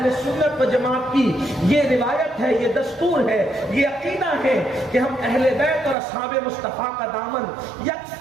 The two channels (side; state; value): left; drops out; at 6.0 s